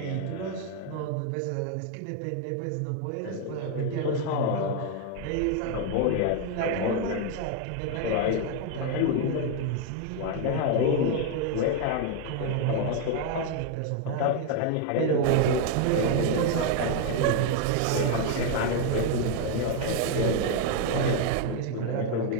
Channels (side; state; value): both; different; correlation 0.01